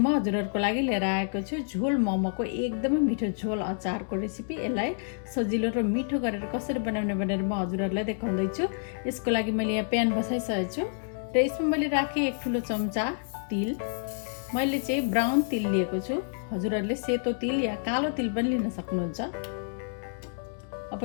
हजुरहरूको लागि लिएर आएको छु झोल मोमोको एकदमै मिठो झोल अचारको रेसिपी। यसलाई सजिलो र मिठो गरेर कसरी बनाउने भनेर म हजुरहरूलाई देखाउँदैछु। यसको लागि मैले यहाँ प्यान बसाइसकेको छु र यसमा मैले राखेँ 1 ठुलो चम्चा तिल। मैले चाहिँ ब्राउन तिल लिएको छु। हजुरहरूले सेतो तिल या कालो तिल पनि लिन सक्नुहुन्छ। अब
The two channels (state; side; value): silent; right; digital silence